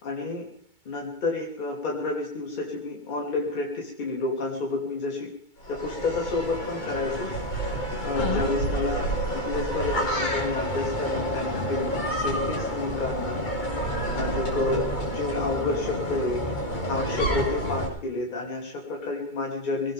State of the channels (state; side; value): late; right; 2.2 ms